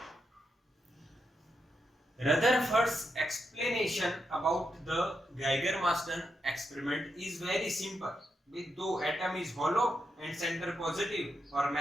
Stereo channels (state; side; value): normal; both; correlation 0.84